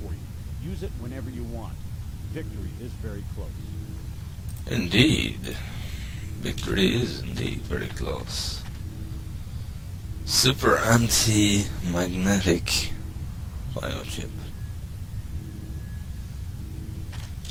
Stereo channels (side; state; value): both; identical; correlation 1.00